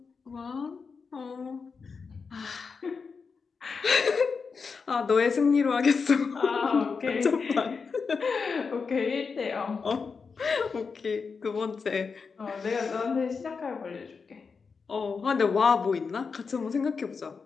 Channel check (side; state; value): right; quieter; 5.2 dB